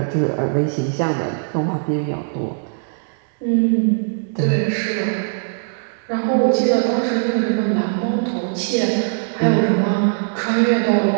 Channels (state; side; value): silent; left; digital silence